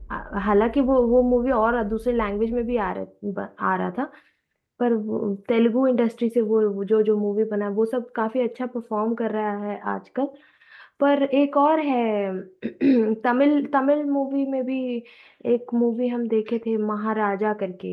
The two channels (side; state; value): both; identical; correlation 1.00